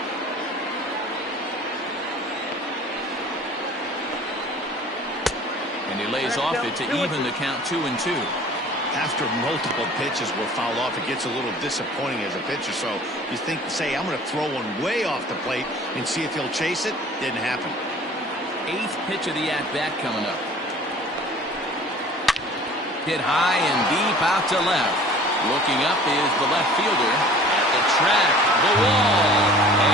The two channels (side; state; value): both; normal; correlation 0.47